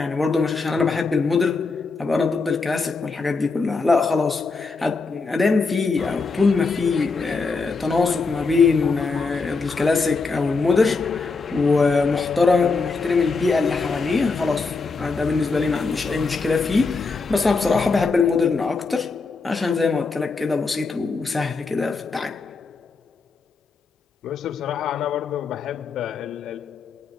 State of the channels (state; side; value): quieter; right; 4.3 dB